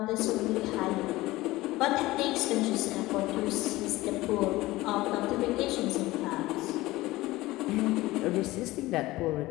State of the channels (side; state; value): right; quieter; 18.6 dB